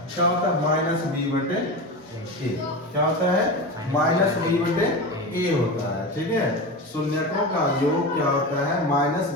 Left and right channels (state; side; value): normal; both; correlation 0.24